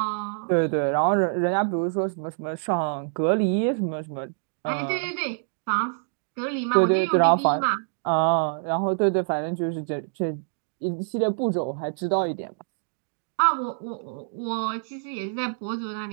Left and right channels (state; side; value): silent; left; digital silence